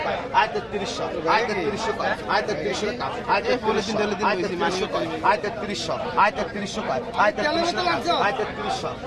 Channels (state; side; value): identical; both; correlation 1.00